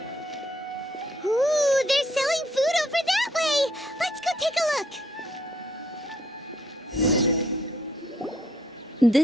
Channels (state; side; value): normal; both; correlation 0.67